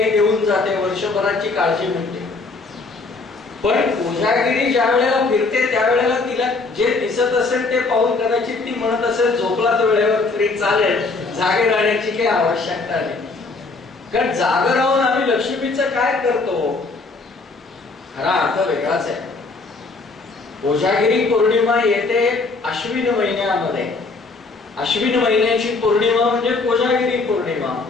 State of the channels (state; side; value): quieter; right; 3.8 dB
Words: देऊन जाते. वर्षभराची काळजी म्हणते. पण कोजागिरी ज्या वेळेला फिरते त्यावेळेला तिला जे दिसत असेल ते पाहून कदाचित ती म्हणत असेल झोपलाच वेळेवर तरी चालेल, जागे राहण्याची काही आवश्यकता नाही. कारण जाग राहून आम्ही लक्ष्मीचं काय करतो, खरा अर्थ वेगळाच आहे. कोजागिरी पौर्णिमा येते अश्विन महिन्यामध्ये. अश्विन महिन्याची पौर्णिमा म्हणजे कोजागिरी पौर्णिमा.